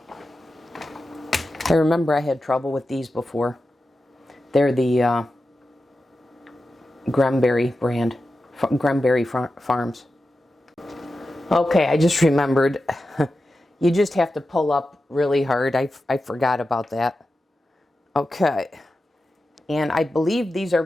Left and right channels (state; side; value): normal; both; correlation 0.92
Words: I remember I had trouble with these before. They're the Granberry brand, Granberry Farms. Okay, I just remembered. You just have to pull up really hard. I forgot about that. Okay. And I believe these are